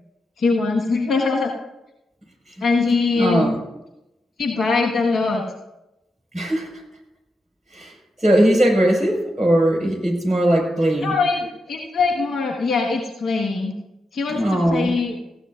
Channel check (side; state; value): both; normal; correlation 0.86